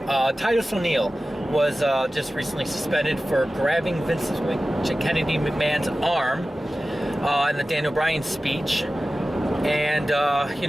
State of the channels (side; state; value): both; normal; correlation 0.95